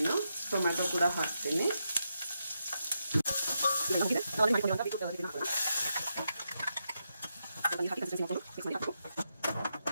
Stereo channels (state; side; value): inverted; both; correlation -0.84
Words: ಟೊಮ್ಯಾಟೊ ಕೂಡ ಹಾಕ್ತೀನಿ.